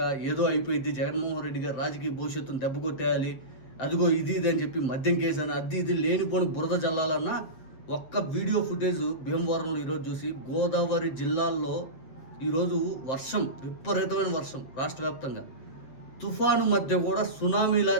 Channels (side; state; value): right; late; 7.9 ms